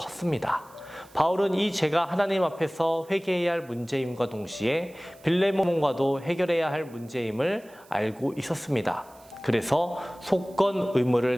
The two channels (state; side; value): noise; right; hiss, 27 dB below the sound